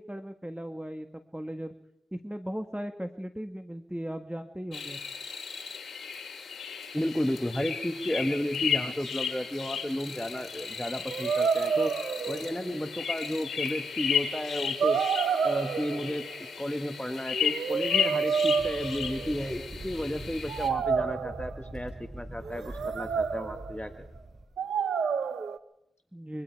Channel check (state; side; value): normal; both; correlation 0.79